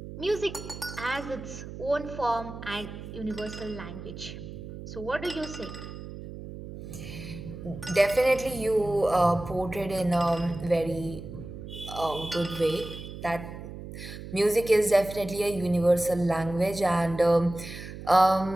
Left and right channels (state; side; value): noise; right; hum, 11 dB below the sound